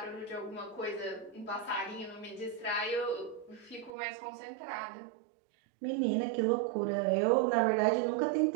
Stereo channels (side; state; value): left; drops out; at 3.9 s